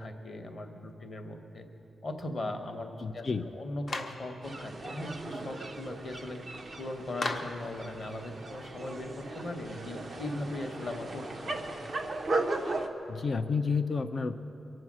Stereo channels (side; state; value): both; normal; correlation 0.85